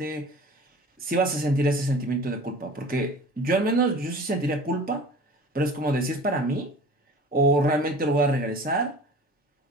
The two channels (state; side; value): normal; both; correlation 0.42